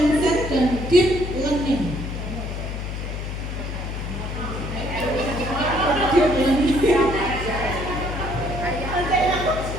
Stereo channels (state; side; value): noise; left; hum, 5 dB below the sound